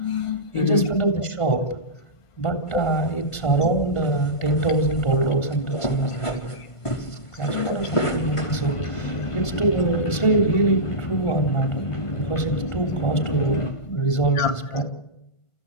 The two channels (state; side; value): late; right; 1.5 ms